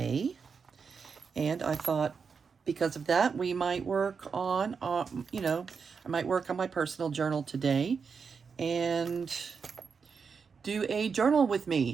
And I thought, because of that, we might work on, I might work on my personal journal today and do a journal with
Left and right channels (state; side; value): quieter; left; 5.7 dB